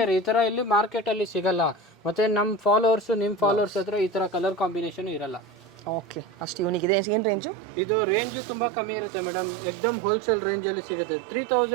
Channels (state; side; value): drops out; left; at 6.9 s